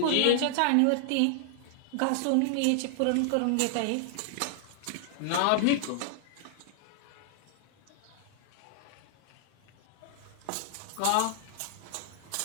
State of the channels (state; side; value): different; both; correlation -0.01